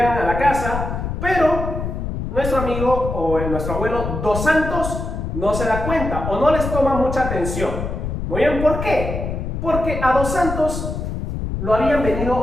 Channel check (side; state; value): left; noise; rumble, 4 dB below the sound